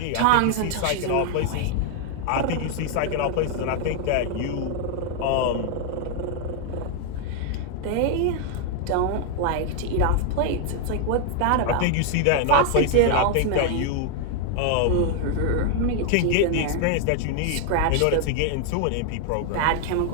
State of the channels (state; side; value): different; both; correlation 0.00